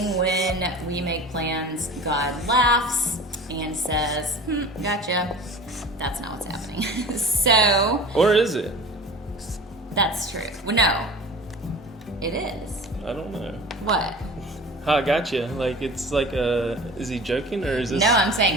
when we make plans, God laughs and says, gotcha. That's not what's happening. So. Or is it? That's true. Well, no. It is. I don't know. What? I gotcha. Like, it's like is he joking or is this? No, I'm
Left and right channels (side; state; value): both; normal; correlation 0.39